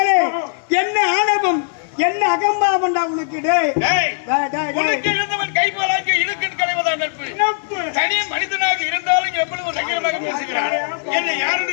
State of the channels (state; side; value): silent; right; 57 dB below the other